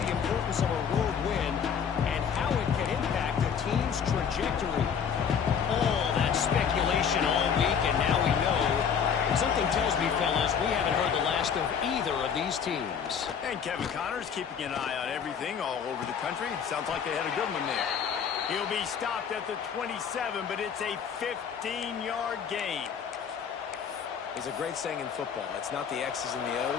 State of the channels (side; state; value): right; quieter; 7.2 dB